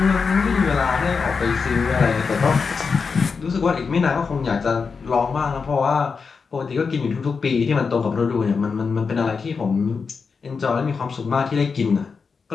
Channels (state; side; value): quieter; right; 5.2 dB